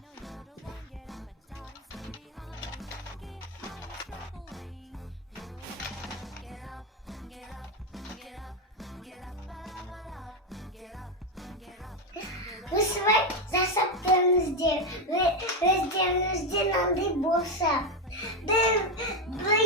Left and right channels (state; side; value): normal; both; correlation 0.08